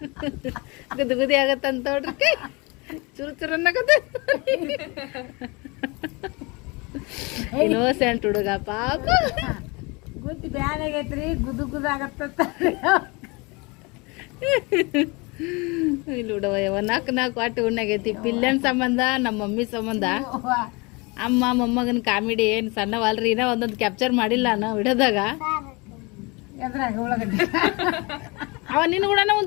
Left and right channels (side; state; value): right; quieter; 27.3 dB